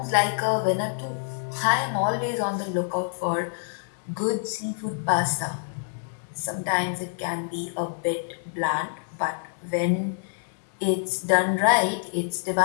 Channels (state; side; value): silent; right; digital silence